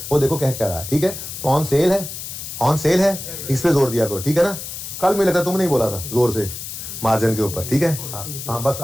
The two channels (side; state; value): left; noise; hiss, 9 dB below the sound